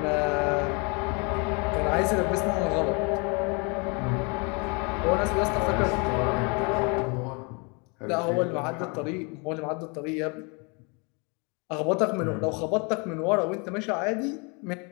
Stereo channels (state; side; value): quieter; right; 32.2 dB